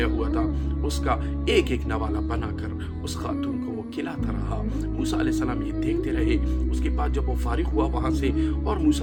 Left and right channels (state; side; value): identical; both; correlation 1.00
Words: ہوا تھا اس کا ایک ایک نوالا بنا کر اس خاتون کو وہ کھلاتا رہا۔ موسیٰ علیہ السلام یہ دیکھتے رہے۔ اس کے بعد جب وہ فارغ ہوا وہاں سے اور